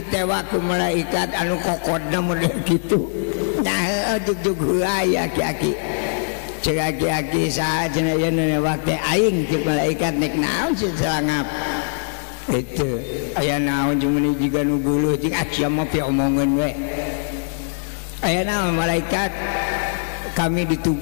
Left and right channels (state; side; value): silent; right; digital silence